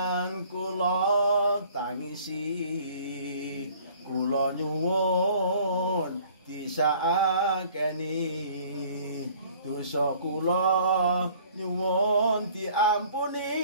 kula tangisi, kula nyuwun disakeni, dosa kula nyuwun diampuni.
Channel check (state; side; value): inverted; both; correlation -0.54